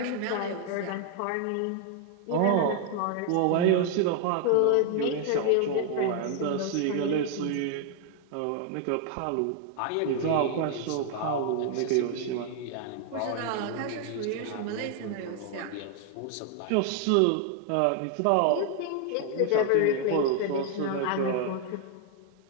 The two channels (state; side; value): different; both; correlation 0.00